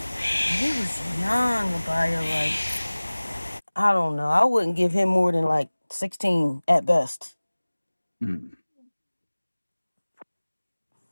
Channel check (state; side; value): inverted; both; correlation -1.00